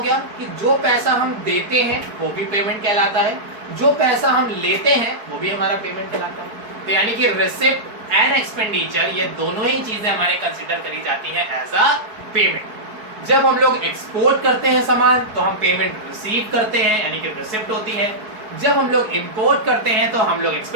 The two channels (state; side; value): late; left; 4.7 ms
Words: गया कि जो पैसा हम देते हैं वो भी पेमेंट कहलाता है, जो पैसा हम लेते हैं वो भी हमारा पेमेंट कहलाता है। तो यानी कि रिसिप्ट एंड एक्सपेंडिचर, ये दोनों ही चीजें हमारे कंसीडर करी जाती हैं एज अ पेमेंट। जब हम लोग एक्सपोर्ट करते हैं सामान तो हम पेमेंट रिसीव करते हैं, यानी कि रिसिप्ट होती है। जब हम लोग इंपोर्ट करते हैं तो हम लोग